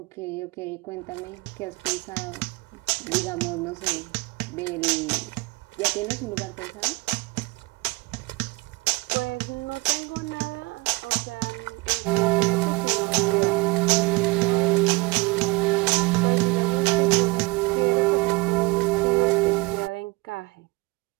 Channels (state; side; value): quieter; left; 24.5 dB